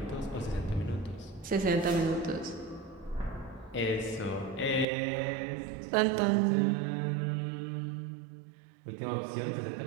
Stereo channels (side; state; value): left; drops out; at 4.9 s